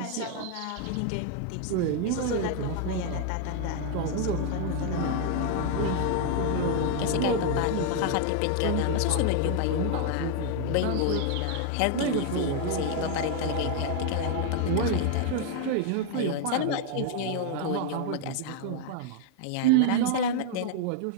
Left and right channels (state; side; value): different; both; correlation 0.00